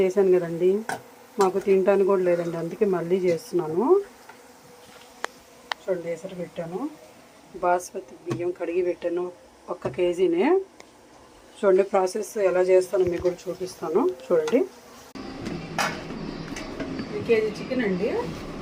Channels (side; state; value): both; identical; correlation 1.00